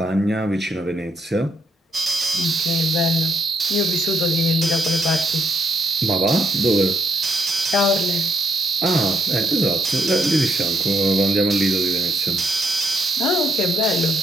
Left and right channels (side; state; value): both; normal; correlation 0.76